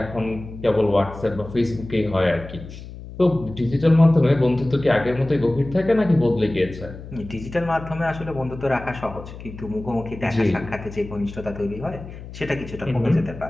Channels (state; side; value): noise; left; hum, 13 dB below the sound